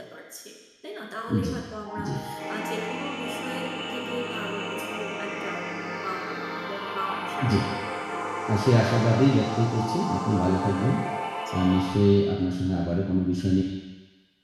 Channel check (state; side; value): identical; both; correlation 1.00